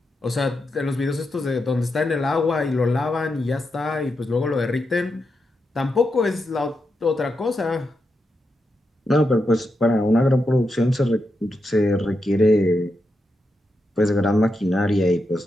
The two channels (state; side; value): normal; both; correlation 0.86